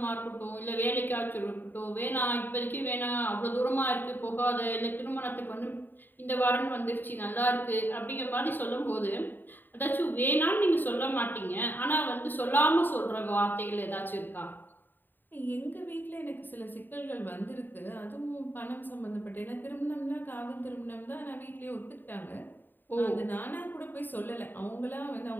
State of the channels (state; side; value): late; right; 0.092 ms